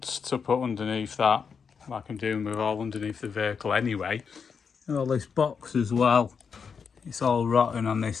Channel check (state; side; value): quieter; right; 6.1 dB